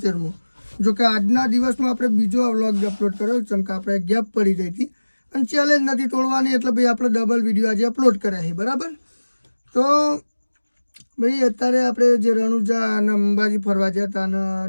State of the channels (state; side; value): inverted; both; correlation -1.00